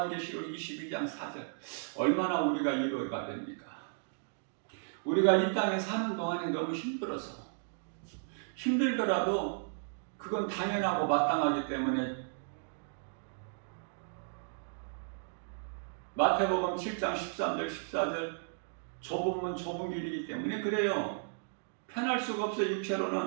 22장 4절, 얼마나 우리가 위로가 됩니까? 우리가 이 땅에 사는 동안에 너무 힘들더라도 그건 당연하고 마땅하기 때문에 마태복음 7장 13절 14절, 좁은 문 좁은 길이기 때문에 그래요. 편할 수가 없어요.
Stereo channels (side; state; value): left; silent; digital silence